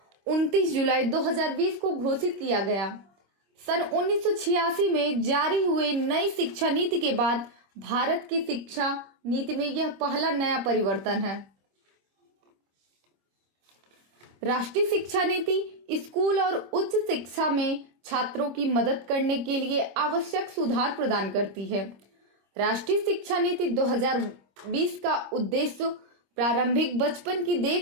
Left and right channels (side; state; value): left; late; 25 ms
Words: 29 जुलाई 2020 को घोषित किया गया। सन 1986 में जारी हुए नई शिक्षा नीति के बाद भारत की शिक्षा नीति में यह पहला नया परिवर्तन है। राष्ट्रीय शिक्षा नीति स्कूल और उच्च शिक्षा में छात्रों की मदद करने के लिए आवश्यक सुधार प्रदान करती है। राष्ट्रीय शिक्षा नीति 2020 का उद्देश्य प्रारंभिक बचपन की